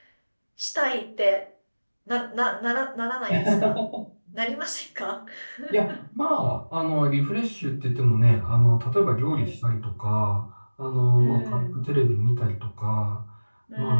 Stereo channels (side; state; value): both; inverted; correlation -1.00